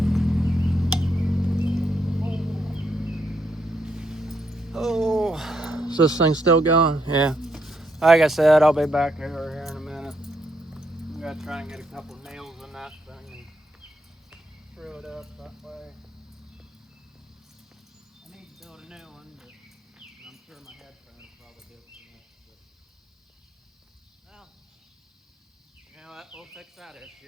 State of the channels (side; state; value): both; normal; correlation 0.76